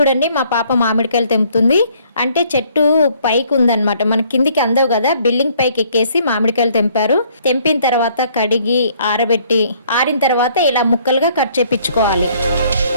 మా పాప మామిడికాయలు తెంపుతుంది. అంటే చెట్టు పైకి ఉందన్నమాట, మన కిందికి అందవు కదా, బిల్డింగ్ పైకి ఎక్కేసి మామిడికాయలు తెంపారు. తెంపిన తర్వాత కడిగి ఆరబెట్టి ఆరిన తర్వాత ఇలా ముక్కలుగా కట్ చేపించుకోవాలి.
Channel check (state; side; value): inverted; both; correlation -0.63